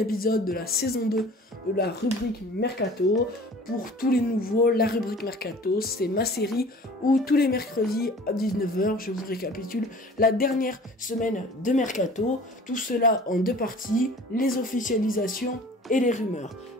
de la saison 2 de la rubrique Mercato. Pour tous les nouveaux, la rubrique Mercato, c'est ma série où tous les mercredis à 19h, je vous récapitule la dernière semaine de Mercato. Tout cela en deux parties, les officialisations et les rumeurs.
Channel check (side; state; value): both; normal; correlation 0.45